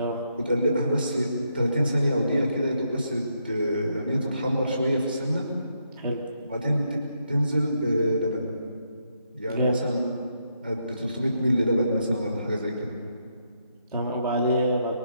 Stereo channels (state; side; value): inverted; both; correlation -0.78